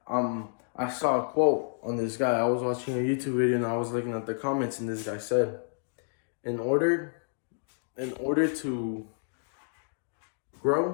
saw a quote on this guy. I was watching a YouTube video and I was looking at the comments, and this guy said, in order to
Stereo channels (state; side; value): silent; right; digital silence